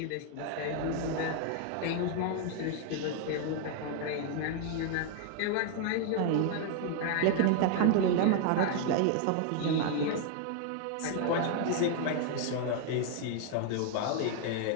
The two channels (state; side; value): different; both; correlation 0.00